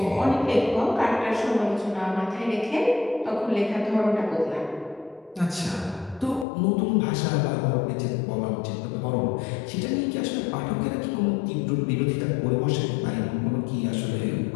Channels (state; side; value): drops out; right; at 6.5 s